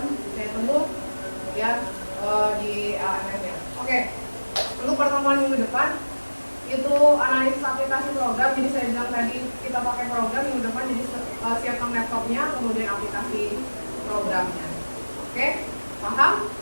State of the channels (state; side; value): inverted; both; correlation -1.00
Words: saya tunggu, kemudian di LMS ya. Oke, untuk pertemuan minggu depan itu analisis aplikasi program. Jadi saya bilang tadi kita pakai program, minggu depan jadi siapkan laptopnya, kemudian aplikasi programnya. Oke, paham?